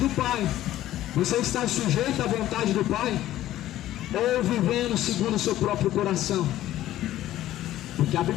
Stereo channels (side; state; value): right; quieter; 13.9 dB